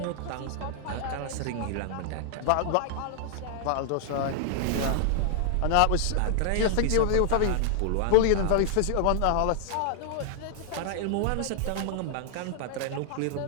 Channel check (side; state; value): both; different; correlation 0.00